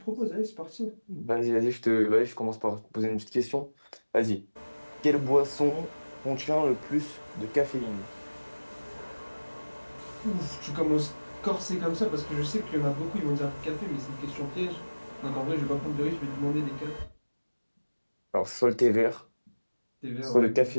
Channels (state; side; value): inverted; both; correlation -1.00